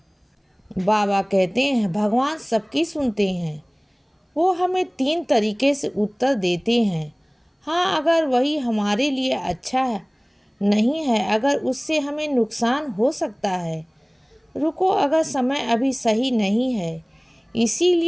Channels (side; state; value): both; identical; correlation 1.00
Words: बाबा कहते हैं भगवान सबकी सुनते हैं। वो हमें 3 तरीके से उत्तर देते हैं। हाँ, अगर वही हमारे लिए अच्छा है, नहीं है अगर उससे हमें नुकसान हो सकता है। रुको अगर समय अभी सही नहीं है।